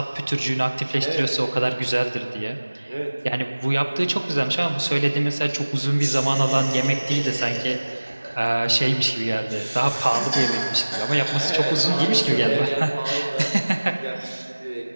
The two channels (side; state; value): both; inverted; correlation -1.00